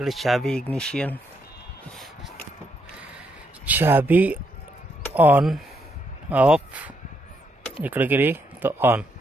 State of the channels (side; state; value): both; normal; correlation 0.77